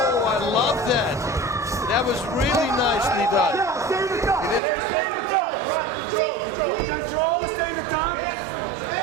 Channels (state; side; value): drops out; left; at 4.6 s